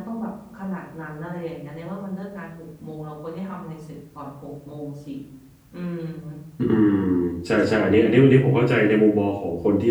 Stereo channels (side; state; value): both; identical; correlation 1.00